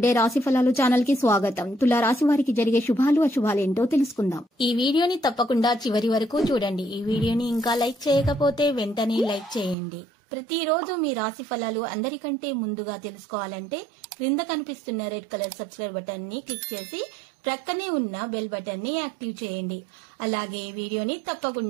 రాశి ఫలాలు ఛానల్ కి స్వాగతం. తులా రాశి వారికి జరిగే శుభాలు అశుభాలు ఏంటో తెలుసుకుందాం. ఈ వీడియోని తప్పకుండా చివరి వరకు చూడండి. ఈ వీడియోని ఇంకా లైక్ చేయకపోతే వెంటనే లైక్ చేయండి. ప్రతిరోజు మీ రాశి ఫలాలు అందరికంటే ముందుగా తెలుసుకోవాలంటే క్రింద కనిపిస్తున్న రెడ్ కలర్ సబ్స్క్రైబ్ బటన్ ని క్లిక్ చేసి ప్రక్కనే ఉన్న బెల్ బటన్ ని యాక్టివ్ చేయండి. అలాగే వీడియోని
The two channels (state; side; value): drops out; left; at 9.8 s